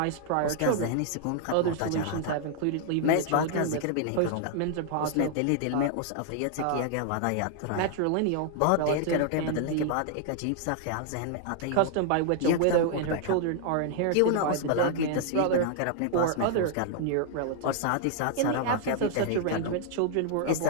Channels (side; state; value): both; different; correlation -0.01